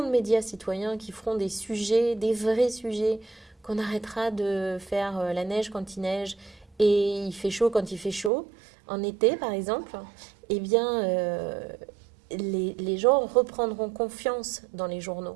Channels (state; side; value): drops out; left; at 8.3 s